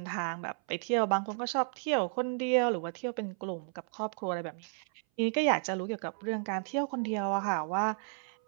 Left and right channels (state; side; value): silent; left; 56 dB below the other